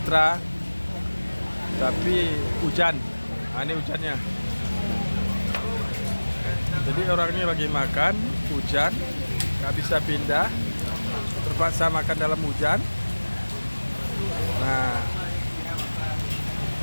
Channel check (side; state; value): both; inverted; correlation -1.00